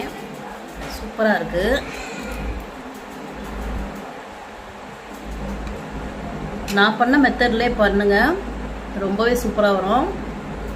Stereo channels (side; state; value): both; identical; correlation 1.00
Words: சூப்பராக இருக்குது. நான் பண்ண மெத்தட்லேயே பண்ணுங்கள், ரொம்பவே சூப்பராக வரும்.